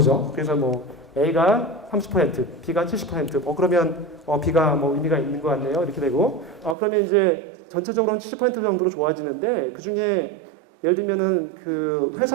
그래서 뭐 A가 30%, B가 70%. 그러면 B가 뭐 의미가 있는 것 같네요. 이렇게 되고 그러면 이제 전체적으로는 70% 정도로 좋아지는데 그 중에 예를 들면은 그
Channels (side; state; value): left; drops out; at 6.8 s